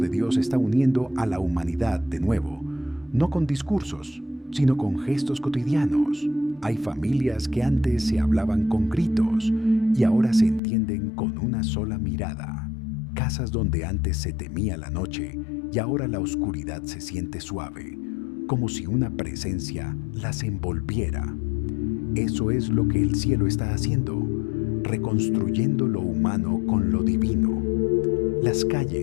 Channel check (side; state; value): right; drops out; at 10.6 s